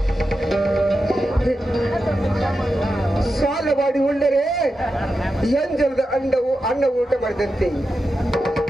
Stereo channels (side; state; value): both; normal; correlation 0.90